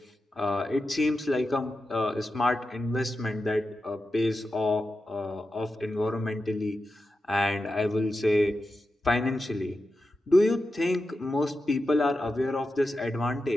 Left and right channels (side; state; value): both; normal; correlation 0.90